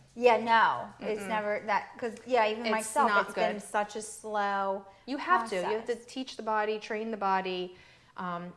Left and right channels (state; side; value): identical; both; correlation 1.00